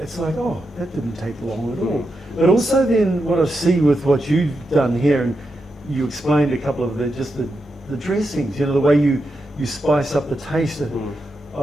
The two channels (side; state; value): both; normal; correlation 0.86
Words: it's like, oh, that didn't take long at all. But also then what I see with what you've done here, and you explained a couple of the dressings, you know, the way you spice up the taste,